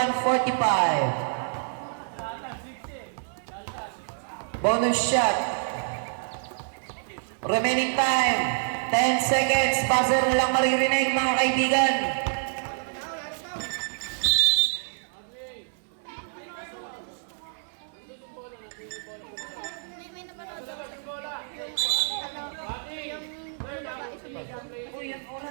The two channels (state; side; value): silent; left; digital silence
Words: Bonus shot. Remaining time, 10 seconds. Buzzer na lang maririnig mga kaibigan. May napanood ako sa yung babae sumigaw. Magninis